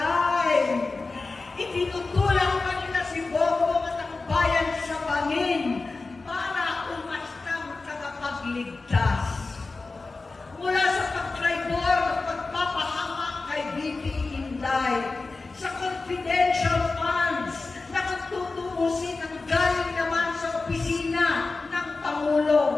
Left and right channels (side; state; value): right; quieter; 3.7 dB